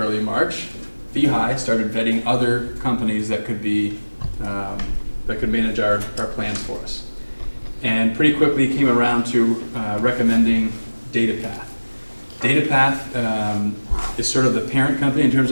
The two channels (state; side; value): inverted; both; correlation -1.00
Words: March, VHI started vetting other companies that could be that could manage our plans for us, and pretty quickly came around to recommending DataPath. DataPath is sort of the parent company in terms